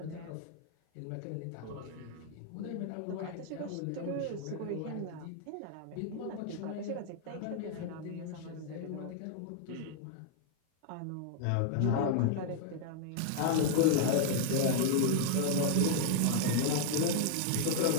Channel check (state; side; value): different; both; correlation 0.00